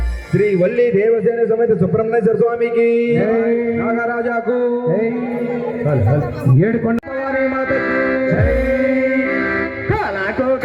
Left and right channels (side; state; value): both; identical; correlation 1.00